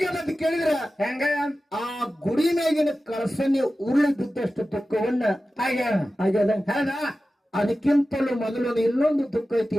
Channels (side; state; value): both; normal; correlation 0.94